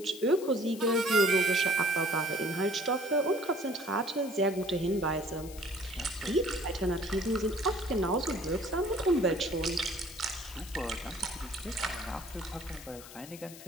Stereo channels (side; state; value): left; noise; hiss, 16 dB below the sound